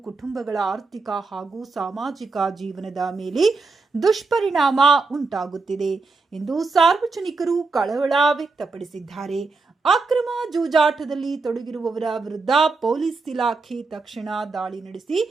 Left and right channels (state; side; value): quieter; left; 4.0 dB